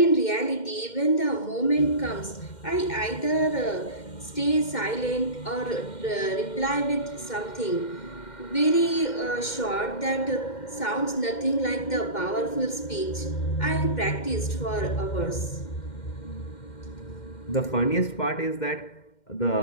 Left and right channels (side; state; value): right; late; 2.1 ms